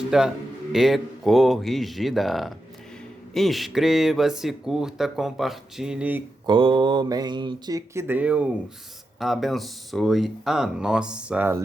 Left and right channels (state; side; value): normal; both; correlation 0.88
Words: e corrigida. Inscreva-se, curta, compartilhe, comente. Que Deus abençoe a nossa